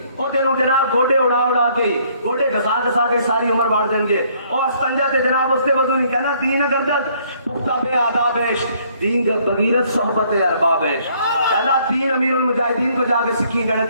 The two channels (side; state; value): both; inverted; correlation -0.64